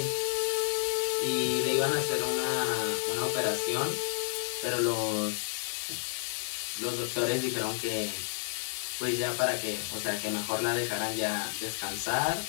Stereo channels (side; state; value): right; silent; digital silence